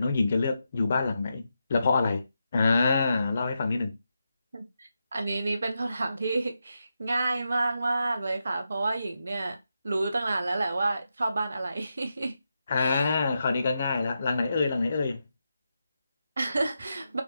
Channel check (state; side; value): inverted; both; correlation -0.87